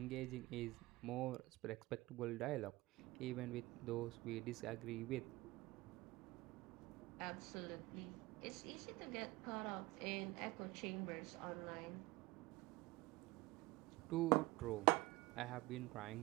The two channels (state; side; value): quieter; left; 20.8 dB